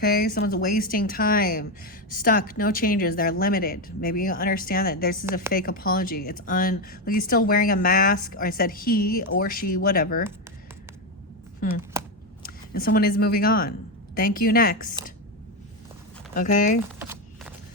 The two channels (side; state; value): both; normal; correlation 0.09